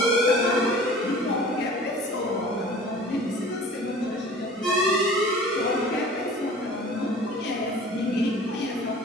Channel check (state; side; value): normal; both; correlation 0.44